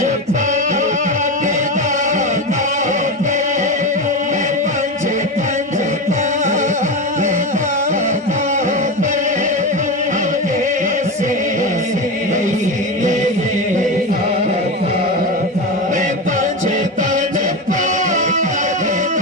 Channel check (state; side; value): normal; both; correlation 0.19